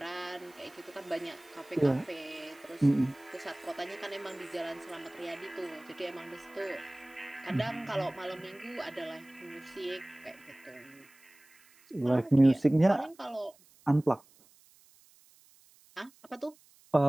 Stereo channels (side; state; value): right; noise; hiss, 28 dB below the sound